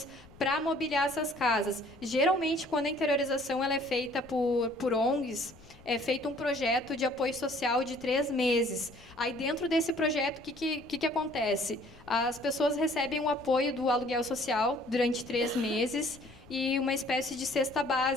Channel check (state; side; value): noise; left; rumble, 23 dB below the sound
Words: para mobiliar essas casas. Geralmente, quando a interiorização ela é feita por ONGs, é feito um projeto de apoio social de 3 meses. Aí, dentro desse projeto, o que acontece? As pessoas recebem o apoio do aluguel social durante 3 meses e uma espécie de cesta